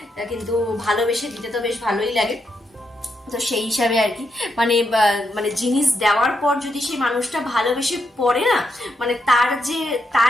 কিন্তু ভালোবেসে দিতে তো বেশ ভালোই লাগে। তো সেই হিসাবে আর কি মানে জিনিস দেওয়ার পর যদি সেই মানুষটা ভালোবেসে পড়ে না, মানে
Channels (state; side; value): normal; both; correlation 0.81